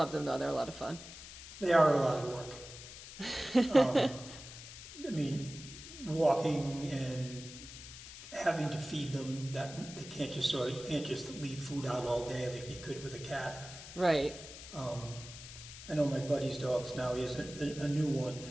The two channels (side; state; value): left; noise; hiss, 13 dB below the sound